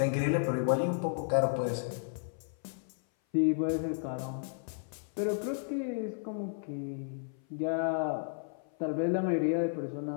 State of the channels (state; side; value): silent; right; 56 dB below the other